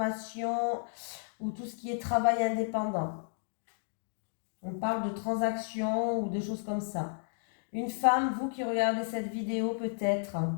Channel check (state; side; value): silent; right; digital silence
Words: ou tout ce qui est travail indépendant. On parle de transaction ou de choses comme ça. Une femme, vous qui regardez cette vidéo peut-être.